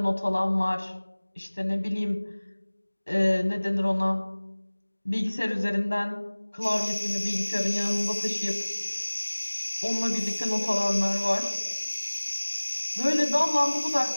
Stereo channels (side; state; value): both; inverted; correlation -1.00